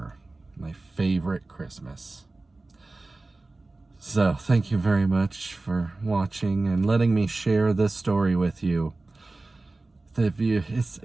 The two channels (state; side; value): quieter; left; 3.2 dB